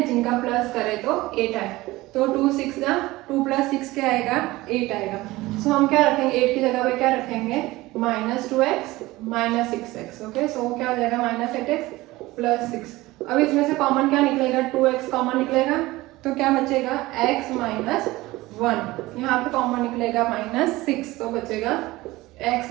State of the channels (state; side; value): quieter; left; 19.2 dB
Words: जिनका प्लस करे तो 8 आए। तो 2 6 जा 2 प्लस 6 क्या आएगा? 8 आएगा। सो हम क्या रखेंगे? 8 की जगह पे क्या रखेंगे? Minus 2x minus 6x। Okay, सो क्या हो जाएगा? Minus 8x plus 6। अब इसमें से कॉमन क्या निकलेगा? 2x कॉमन निकलेगा, तो क्या बचेगा? x minus 1। यहाँ पे कॉमन निकलेगा माइनस 6, तो बचेगा x